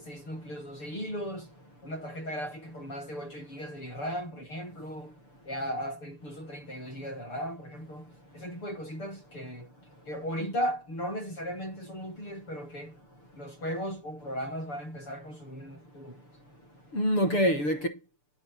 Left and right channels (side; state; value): right; late; 6.8 ms